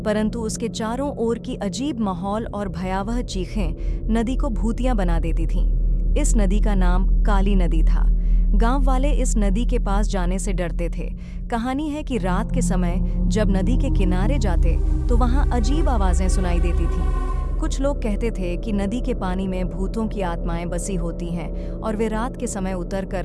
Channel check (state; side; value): identical; both; correlation 1.00